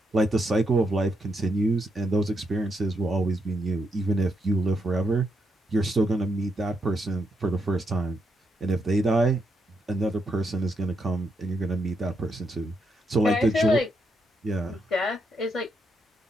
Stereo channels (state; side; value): normal; both; correlation 0.80